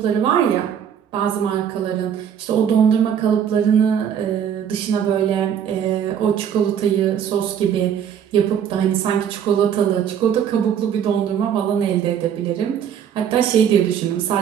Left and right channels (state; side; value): quieter; left; 8.7 dB